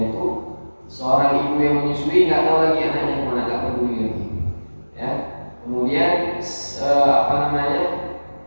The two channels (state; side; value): inverted; both; correlation -1.00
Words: itu, seorang ibu yang menyusui nggak tahu lagi anaknya kemana, nggak peduli lagi. Ya, kemudian